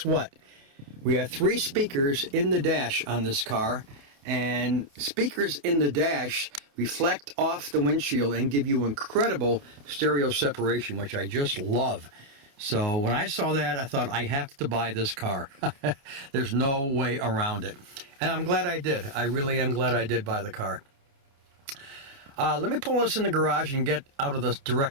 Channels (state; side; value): late; left; 29 ms